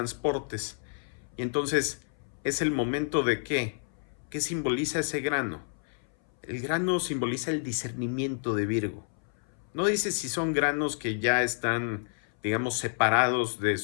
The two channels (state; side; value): silent; right; 58 dB below the other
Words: Y entonces es el momento de ¿qué? ¿Qué simboliza ese grano? El grano simboliza el discernimiento de Virgo. No dice si son granos que ya están, digamos, separados